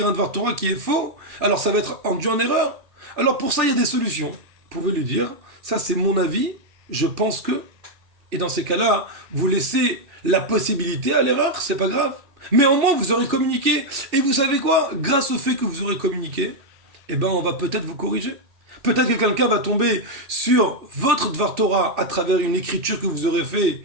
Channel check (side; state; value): left; late; 2.6 ms